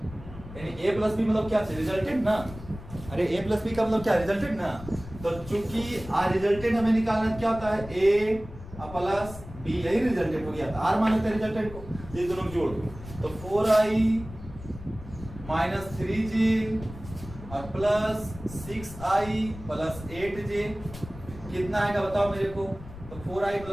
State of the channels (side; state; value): left; noise; rumble, 14 dB below the sound